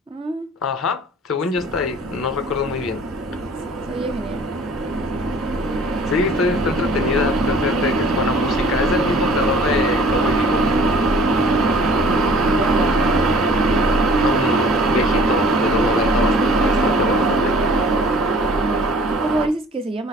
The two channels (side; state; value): both; normal; correlation 0.51